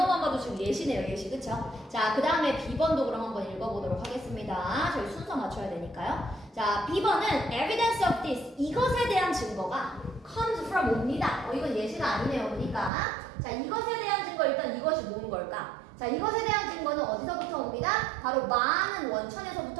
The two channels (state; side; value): drops out; left; at 12.9 s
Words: 봐도 지금 예시네요. 예시. 그쵸? 자, 그 다음에 B번도 그럼 한번 읽어보도록 하겠습니다. 저희 순서 맞춰야 되니까요. 자, B번은 evidence of this. 이것에 대한 증거가 comes from 옵니다. 이건 예시가 아니네요. 보니까. 자, 이것에 대한 증거 일단 이것이 뭔 걸까? 자, 이것에 대한 증거는 어디서부터 옵니다? 바로 많은